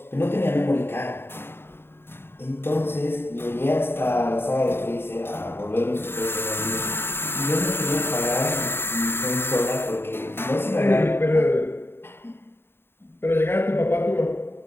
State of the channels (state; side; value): late; right; 0.11 ms